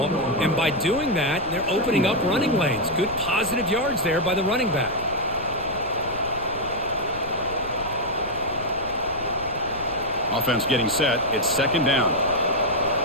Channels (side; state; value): left; noise; rumble, 15 dB below the sound